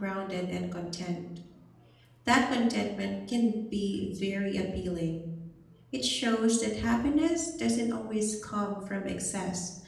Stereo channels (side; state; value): both; identical; correlation 1.00